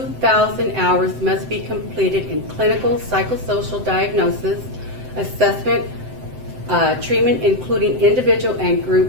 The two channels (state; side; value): late; left; 7.8 ms